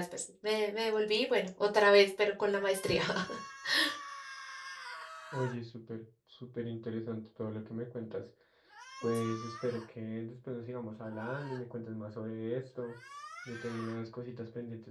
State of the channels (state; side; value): identical; both; correlation 1.00